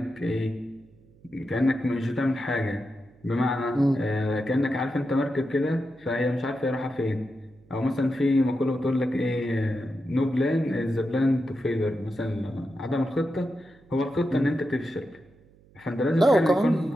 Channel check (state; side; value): noise; right; hum, 28 dB below the sound